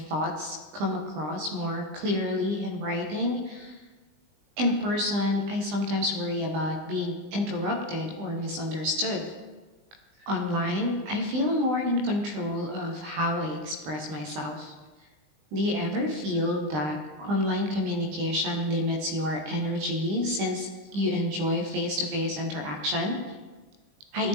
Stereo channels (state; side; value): late; left; 20 ms